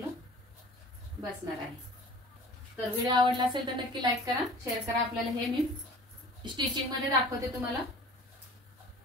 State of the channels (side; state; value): both; normal; correlation 0.44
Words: बसणार आहे। तर व्हिडिओ आवडला असेल तर नक्की लाईक करा, शेअर करा। आपल्याला हे मी स्टिचिंग मध्ये दाखवते तुम्हाला।